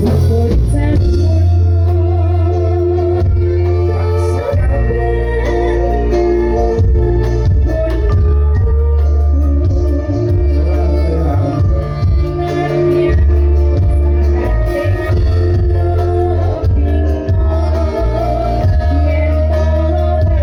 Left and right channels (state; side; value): identical; both; correlation 1.00